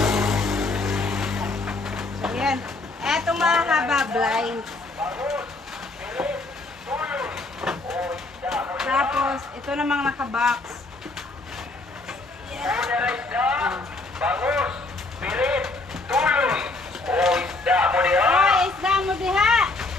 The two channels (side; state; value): right; quieter; 3.2 dB